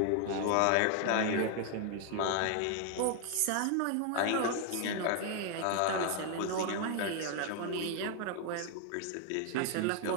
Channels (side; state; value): both; different; correlation 0.00